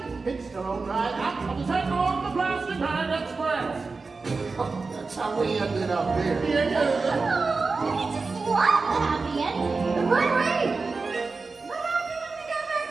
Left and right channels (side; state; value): left; quieter; 4.1 dB